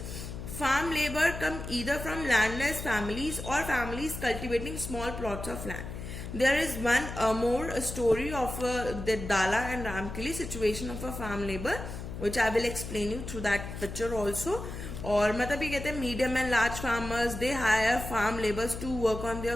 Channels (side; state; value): left; noise; hum, 8 dB below the sound